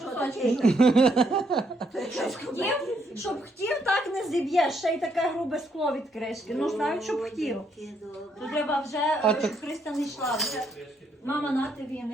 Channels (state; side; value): normal; both; correlation 0.73